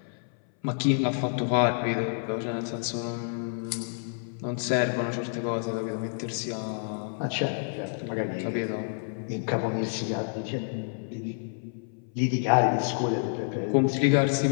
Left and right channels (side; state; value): right; silent; 59 dB below the other